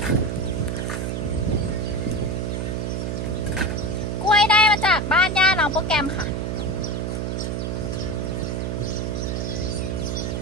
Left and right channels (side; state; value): right; noise; hum, 1 dB below the sound